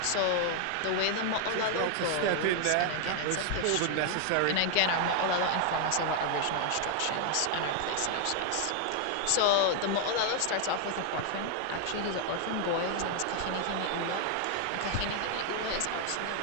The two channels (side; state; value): both; different; correlation 0.00